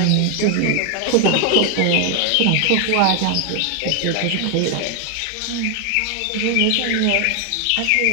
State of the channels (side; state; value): both; different; correlation 0.00